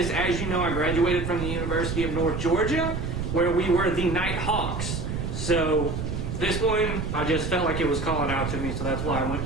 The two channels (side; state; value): right; noise; rumble, 3 dB below the sound